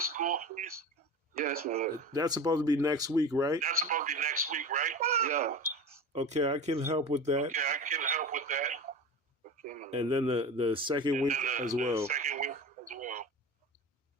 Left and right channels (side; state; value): both; normal; correlation 0.31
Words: Yes, my lord. That's supposed to be next week, right? Yeah. Okay, I can help with that. Okay, my lord. And then the second week as well.